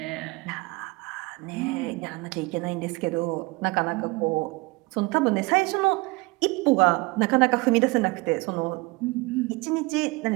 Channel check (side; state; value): left; quieter; 24.4 dB